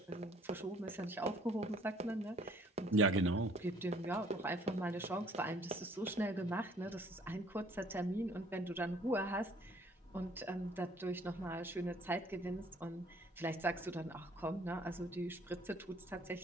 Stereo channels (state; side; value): normal; both; correlation 0.58